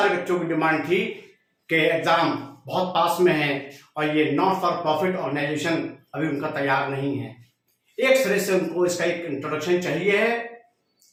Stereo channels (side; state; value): both; identical; correlation 1.00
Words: बच्चों की डिमांड थी कि एग्जाम बहुत पास में है और ये नॉट फॉर प्रॉफिट ऑर्गेनाइजेशन अभी उनका तैयार नहीं है। एक सिरे से उनको इसका एक इंट्रोडक्शन चाहिए है